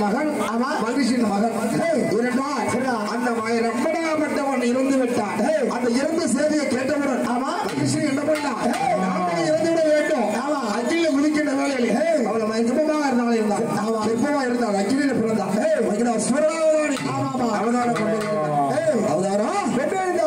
மகன் மகிழ்ச்சியின் மகன் அந்த ரம்பனாகப்பட்டவன் இறந்து விட்டான். அந்த இறந்த செய்தியை கேட்டவுடன் மகிழ்ச்சி என்ன பண்ணா இறந்து விட வேண்டும். அக்கில குதிக்கின்ற வேலையில் அவளை மயக்கமாக இருந்தாலும் எப்பமா இருந்தால் அக்கில பிறந்தான்.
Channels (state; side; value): identical; both; correlation 1.00